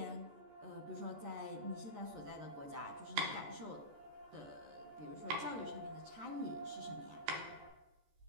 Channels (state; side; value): late; left; 14 ms